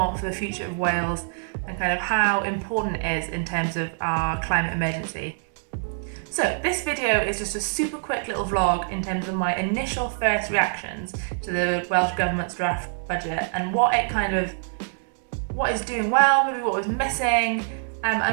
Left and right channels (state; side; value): silent; left; 62 dB below the other